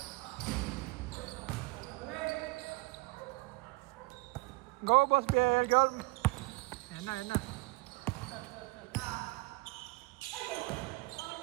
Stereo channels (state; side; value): quieter; left; 25.7 dB